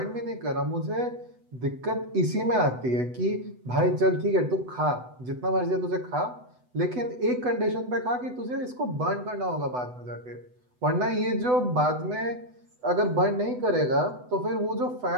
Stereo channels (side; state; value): left; late; 8.0 ms